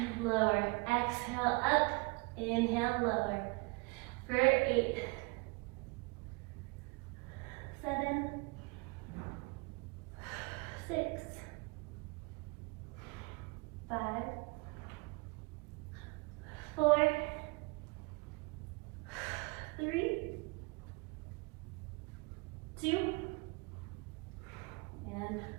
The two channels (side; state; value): left; quieter; 28.3 dB